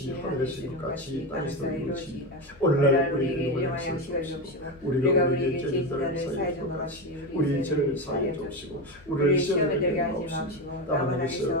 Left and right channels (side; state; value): left; noise; hum, 25 dB below the sound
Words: 하늘에서 이룬 같이 땅에서도 이루어지이다. 오늘날 우리에게 일용할 양식을 주옵시고 우리가 우리에게 죄진 자를 사하여 준 것 같이 우리 죄를 사하여 주옵시고 우리를 시험에 들게 하지 마옵시고 다만